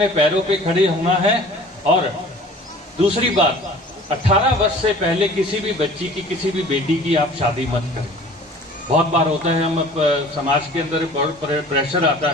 पैरों पे खड़े होना है। और दूसरी बात, 18 वर्ष से पहले किसी भी बच्ची की, किसी भी बेटी की आप शादी मत करें। बहुत बार होता है, हम समाज के अंदर बहुत प्रेशर आता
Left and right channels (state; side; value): normal; both; correlation 0.47